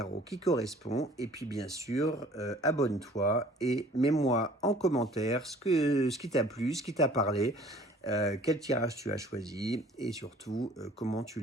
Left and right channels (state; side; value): normal; both; correlation 0.52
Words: qui correspond. Et puis, bien sûr, abonne-toi et mets-moi en commentaire ce qui t'a plu, ce qui t'a parlé, quel tirage tu as choisi et surtout comment tu